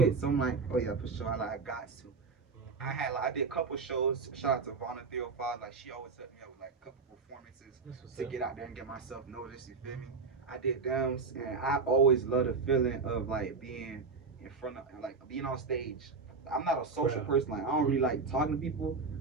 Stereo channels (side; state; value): left; quieter; 4.6 dB